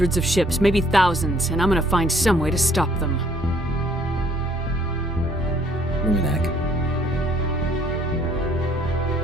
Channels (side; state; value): both; normal; correlation 0.61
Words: of ships, maybe thousands, and I'm gonna find some way to stop them.